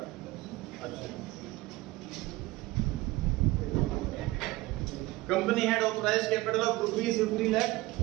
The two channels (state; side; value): quieter; left; 19.6 dB